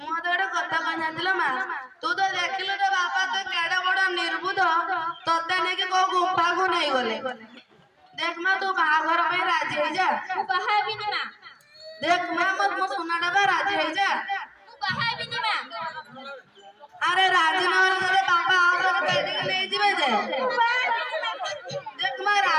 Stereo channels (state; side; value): identical; both; correlation 1.00